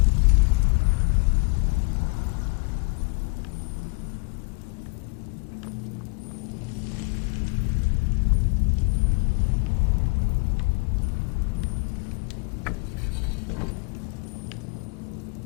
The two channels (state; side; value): quieter; right; 31.8 dB